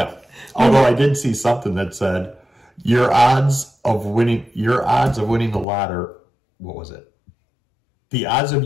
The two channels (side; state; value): right; drops out; at 5.7 s